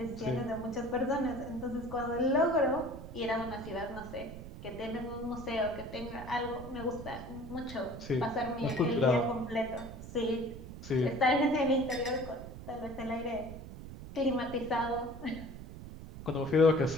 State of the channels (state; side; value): noise; right; rumble, 12 dB below the sound